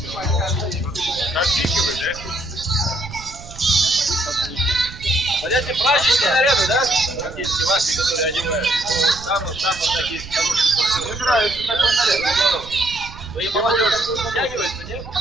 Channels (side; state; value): right; noise; rumble, 15 dB below the sound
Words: Понятие праздничные наряды, да? Практически ваши, которые одевают. Самые такие хорошие. Мне нравится такой наряд. Здорово. Вы и молодежь втягиваете, нет?